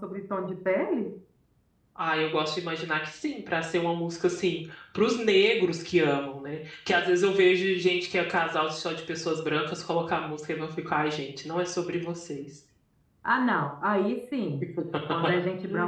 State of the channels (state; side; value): identical; both; correlation 1.00